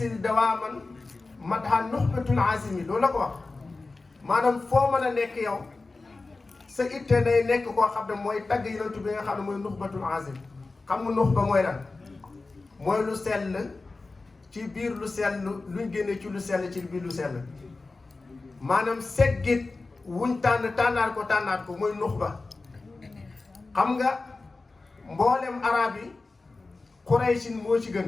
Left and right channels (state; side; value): quieter; right; 3.6 dB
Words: dawaaman madha nuxbatul azimi loolu la ko wax maanaam foo mën a nekk yow sa itte day nekk koo xam ne mooy tagg yonentu bi nga xam ne mooy nuxbatul azim xam nga nuxba mooy lan mooy lu sell ci biir lu sell luñ génne ci lu sell ci biir lu sell maanaam seggit wuñ tànnaat ko mooy nuxba xam nga mboolem arab yi Quraysin moo ci